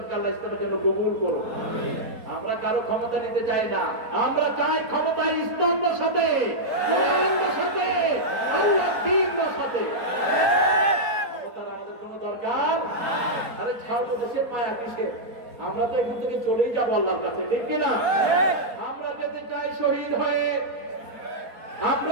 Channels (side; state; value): left; late; 4.2 ms